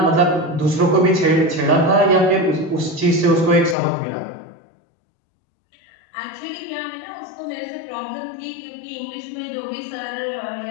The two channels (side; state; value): right; drops out; at 3.8 s